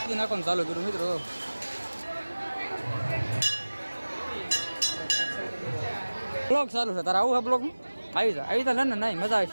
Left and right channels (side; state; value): both; inverted; correlation -1.00